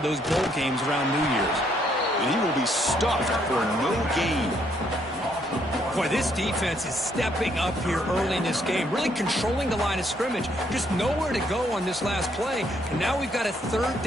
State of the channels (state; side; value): normal; both; correlation 0.70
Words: those bowl games around New Year's. And he will be stuffed for no gain. Boy, this defense is stepping up here early in this game, really controlling the line of scrimmage. Just nowhere to go on this last play. And now we've got a 3rd